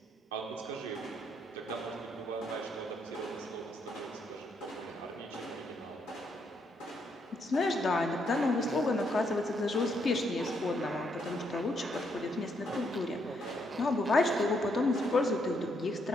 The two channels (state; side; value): normal; both; correlation 0.75